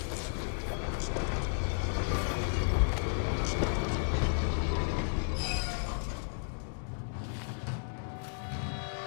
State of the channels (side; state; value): right; silent; digital silence